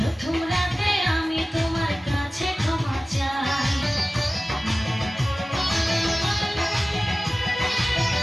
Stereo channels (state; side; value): normal; both; correlation 0.96